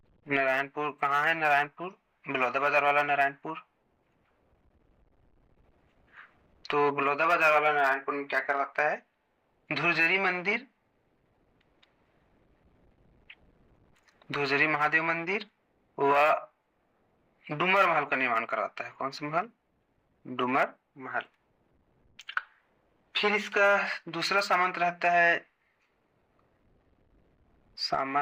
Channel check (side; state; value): both; identical; correlation 1.00